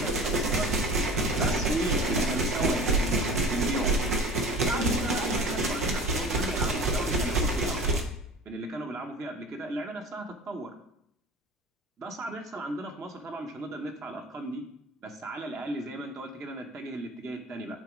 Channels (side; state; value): both; normal; correlation 0.38